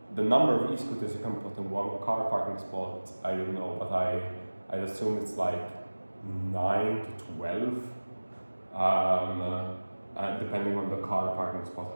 number of e-scooters you can put in one car parking spot, I don't know, but I assume it's like 9 to 12, depending on the car parking spot,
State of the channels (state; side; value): inverted; both; correlation -1.00